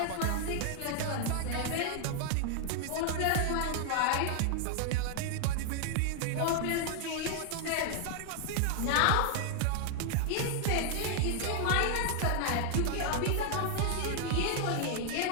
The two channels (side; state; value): both; different; correlation 0.00